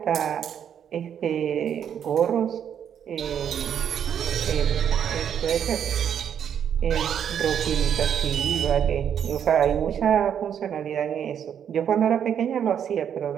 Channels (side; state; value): left; quieter; 8.7 dB